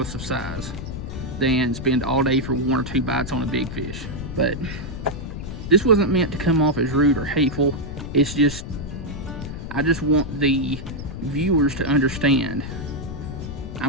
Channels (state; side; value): noise; left; rumble, 8 dB below the sound